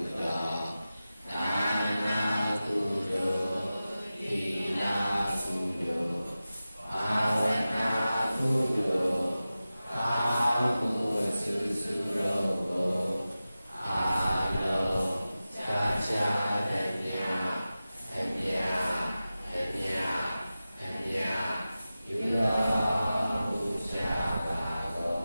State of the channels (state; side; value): inverted; both; correlation -0.95